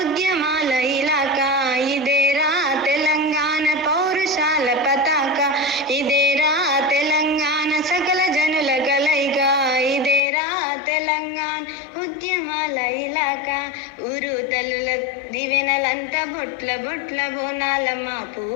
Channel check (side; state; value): right; drops out; at 10.2 s